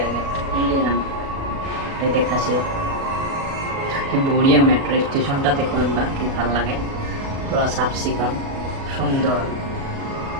গেট ইন্ডিয়ান এটা দেখাছে কি বড়িয়া মেট্রো স্টেশনটা দেখো একবার কি ভালো লাগে পুরো সাফ সিকন সুন্দর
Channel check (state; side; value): late; left; 37 ms